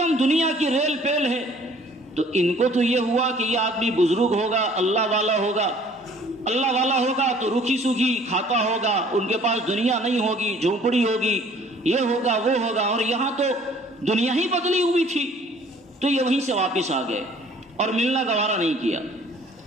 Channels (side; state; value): both; normal; correlation 0.55